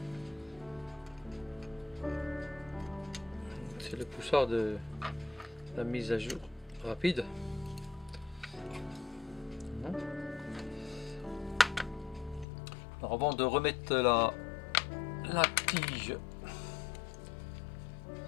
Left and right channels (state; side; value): drops out; right; at 12.5 s